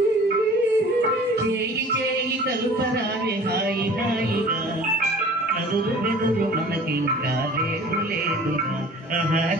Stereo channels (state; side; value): normal; both; correlation 0.46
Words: చేయి చేయి కలుపరారే హాయి హాయిగా నదురు బెదురు మనకింకా లేదు లేదురా ఆహా